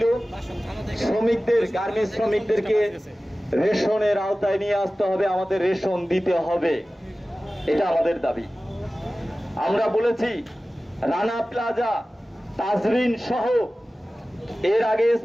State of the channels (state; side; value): normal; both; correlation 0.96